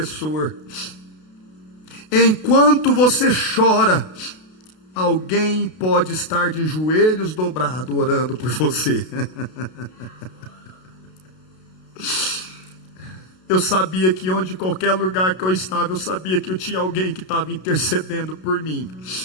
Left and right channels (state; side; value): late; right; 32 ms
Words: Enquanto você chora, alguém pode estar de joelhos dobrados orando por você. Eu sabia que onde qualquer lugar que eu estava, eu sabia que eu tinha alguém que estava intercedendo por mim.